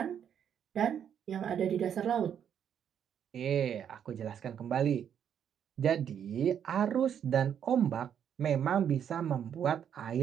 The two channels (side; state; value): left; quieter; 8.7 dB